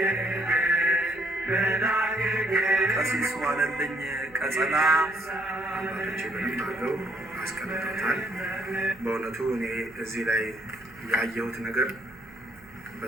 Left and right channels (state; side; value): noise; right; hum, 25 dB below the sound